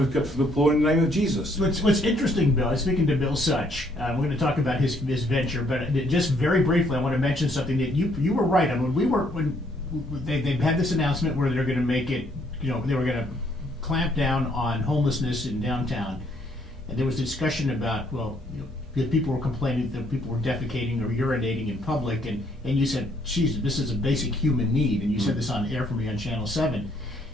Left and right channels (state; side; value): normal; both; correlation 0.67